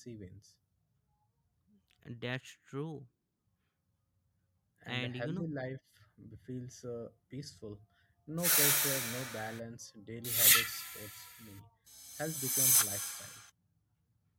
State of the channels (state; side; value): identical; both; correlation 1.00